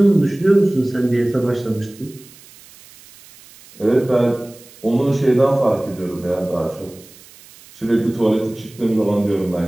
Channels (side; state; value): right; noise; hiss, 23 dB below the sound